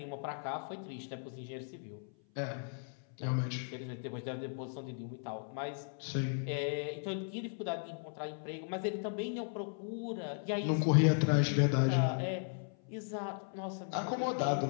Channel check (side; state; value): right; silent; 53 dB below the other